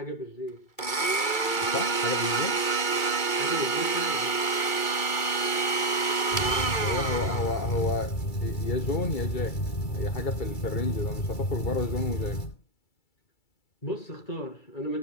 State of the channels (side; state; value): right; late; 2.3 ms